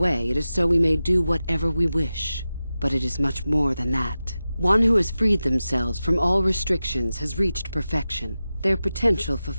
it is so we may do whatever we wish. But it is much more than that. One who has freed themselves from all restrictions has reached perfection, their potential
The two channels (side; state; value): both; inverted; correlation -0.93